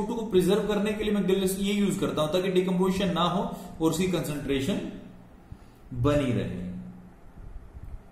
को प्रिजर्व करने के लिए मैं ये यूज करता हूं ताकि डिकम्पोजिशन ना हो और उसकी कंसंट्रेशन बनी रहे।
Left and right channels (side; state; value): both; identical; correlation 1.00